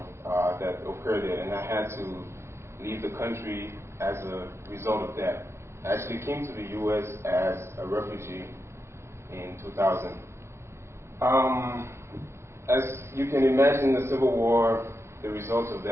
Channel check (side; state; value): left; late; 0.13 ms